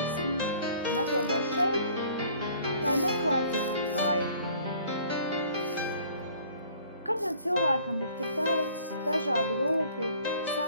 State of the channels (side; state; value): both; inverted; correlation -0.55